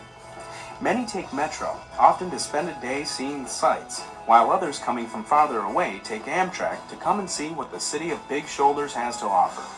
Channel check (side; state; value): both; identical; correlation 1.00